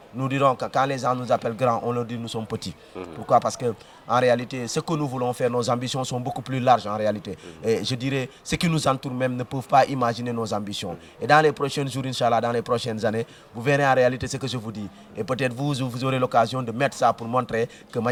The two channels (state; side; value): identical; both; correlation 1.00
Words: nous dirons que quand les gens nous appellent grands, on leur dit que nous sommes petits. Pourquoi? Parce que en réalité, ce que nous voulons faire, nos ambitions sont beaucoup plus larges en réalité. Et je dirais, ceux qui nous entourent même ne peuvent pas imaginer nos ambitions. Et dans les prochains jours, Inch'Allah, dans les prochaines années, vous verrez en réalité ce que je vous dis. Et peut-être vous aurez l'occasion de mettre ça pour montrer que